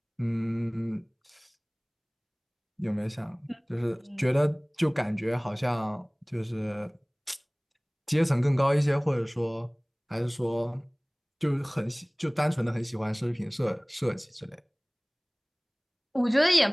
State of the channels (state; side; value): identical; both; correlation 1.00